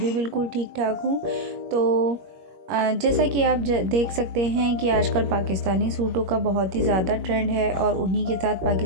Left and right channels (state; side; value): late; left; 21 ms